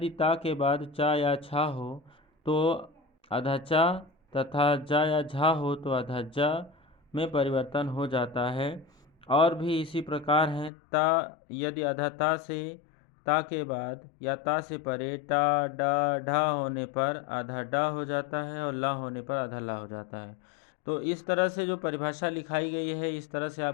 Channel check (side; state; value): right; drops out; at 10.7 s